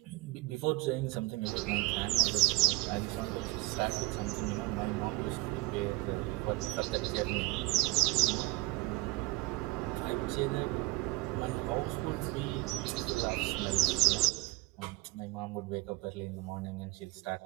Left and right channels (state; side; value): quieter; left; 21.5 dB